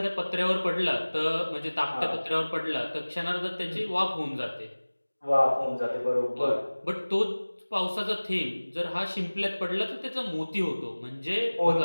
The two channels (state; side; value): inverted; both; correlation -1.00